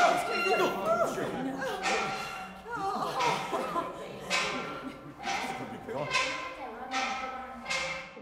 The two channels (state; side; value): identical; both; correlation 1.00